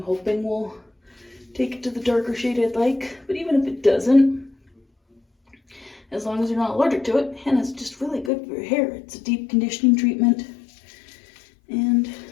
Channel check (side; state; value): right; drops out; at 8.3 s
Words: hoping will take it to the darker shade I'd like. But even if it doesn't, as long as you're not allergic to it, henna's just really good for your hair. It's a deep conditioning treatment. And